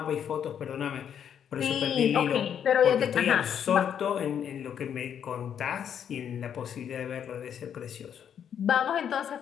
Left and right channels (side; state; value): right; quieter; 8.7 dB